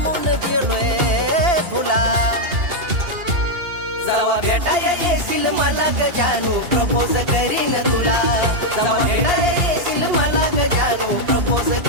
गेलोय फुला. जवा भेटाया येशील मला ग जानू प्रपोज करीन तुला, जवा भेटाया येशील मला ग जानू प्रपोज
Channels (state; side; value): late; left; 2.8 ms